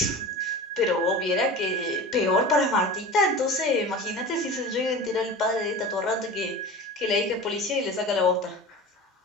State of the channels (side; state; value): both; normal; correlation 0.33